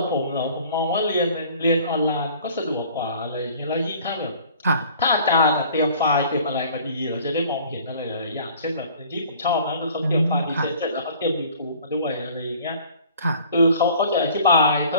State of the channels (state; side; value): inverted; both; correlation -0.50